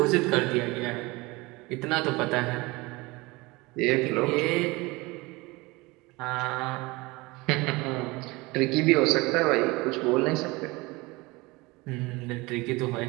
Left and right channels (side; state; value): left; quieter; 23.3 dB